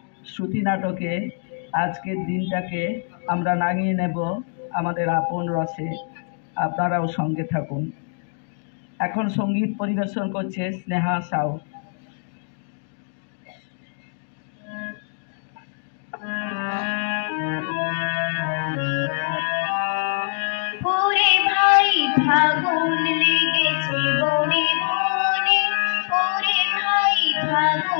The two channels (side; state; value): right; silent; 63 dB below the other